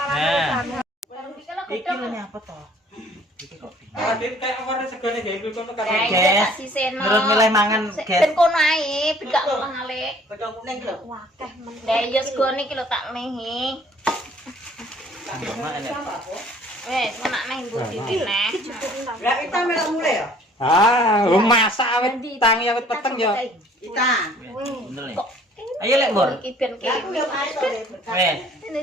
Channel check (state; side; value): normal; both; correlation 0.56